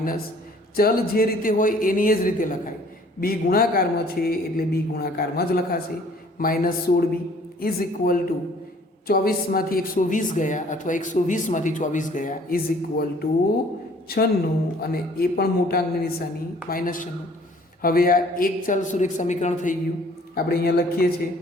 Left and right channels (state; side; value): normal; both; correlation 0.56